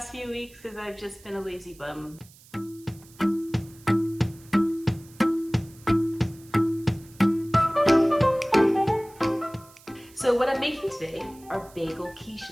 few weeks because I've just been a lazy bum. So what I'm making today are bagel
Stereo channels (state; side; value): noise; right; hiss, 24 dB below the sound